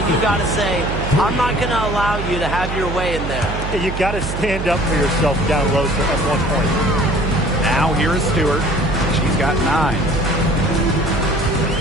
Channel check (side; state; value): right; noise; hum, 5 dB below the sound